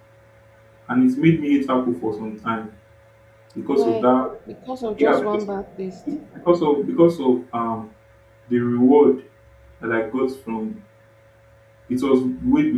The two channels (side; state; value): both; identical; correlation 1.00